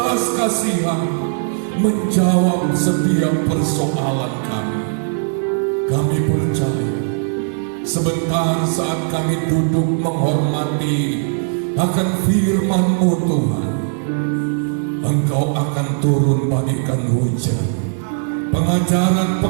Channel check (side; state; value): left; silent; digital silence